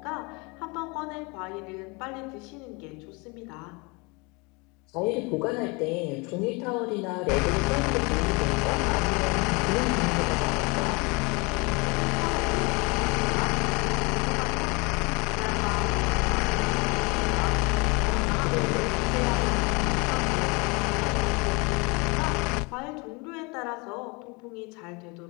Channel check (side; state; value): right; quieter; 28.6 dB